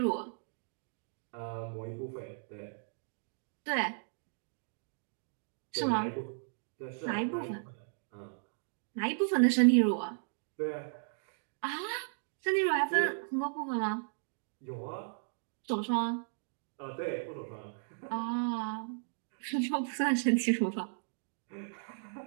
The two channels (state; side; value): silent; left; digital silence